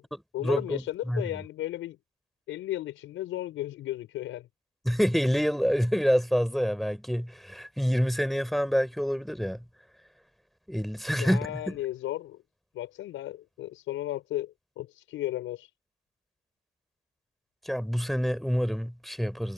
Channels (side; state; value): both; normal; correlation 0.87